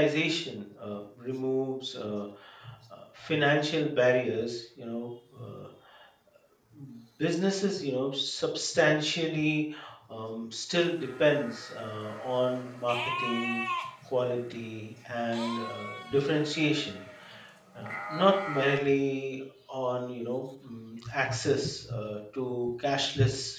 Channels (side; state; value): both; identical; correlation 1.00